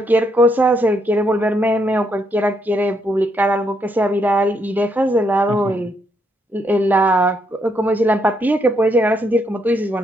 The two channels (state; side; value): normal; both; correlation 0.75